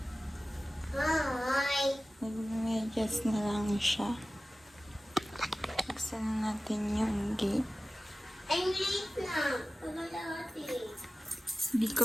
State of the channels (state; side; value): normal; both; correlation 0.96